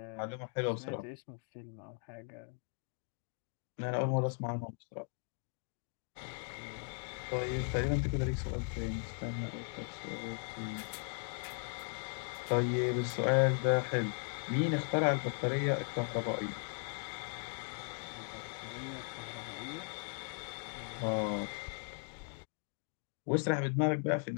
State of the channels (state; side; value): quieter; right; 39.0 dB